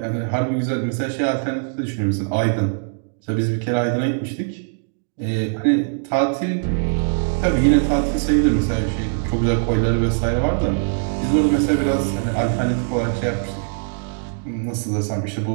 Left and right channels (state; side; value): silent; left; digital silence